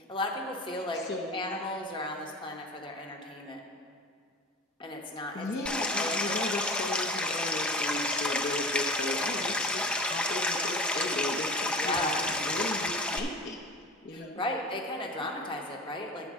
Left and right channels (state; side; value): normal; both; correlation 0.34